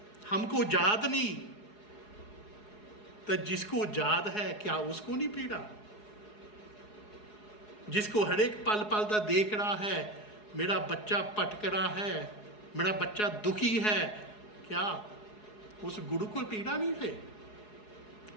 हमको याद नहीं, तो जिसको याद है क्या उसको नहीं पीड़ा? जिसको हर एक पल पल का देख रहा है, मेरा बच्चा भटक रहा है, मेरा बच्चा दुखी है, क्या उस गुरु को पीड़ा नहीं है?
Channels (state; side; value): late; right; 4.8 ms